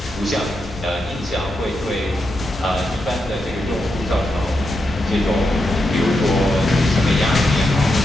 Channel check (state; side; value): normal; both; correlation 0.85